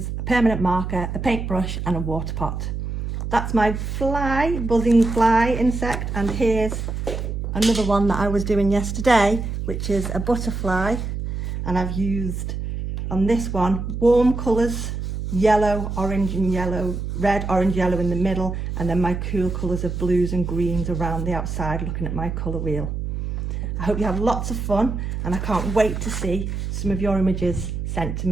a permanent marker, a paintbrush and a water pot. That's my fly, buzzing fly insect, and here's another one that I was doing yesterday, which is a butterfly, and I've used on this one warm colours, yellow, orange and yellow, red, orange, yellow in the middle, and then my cool colours of blues and greens around the outside looking at my colour wheel. I hope you have lots of fun, and I can't wait to see some of your images sent to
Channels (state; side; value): noise; right; hum, 4 dB below the sound